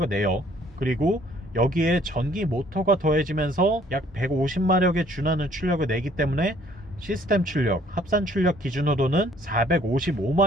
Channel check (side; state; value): both; normal; correlation 0.60